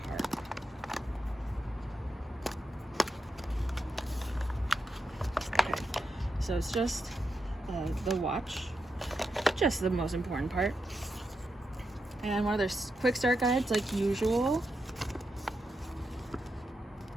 part. Okay, so it's just the watch, just the most important part. And one of their quick start guides, like usual.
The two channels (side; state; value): both; normal; correlation 0.86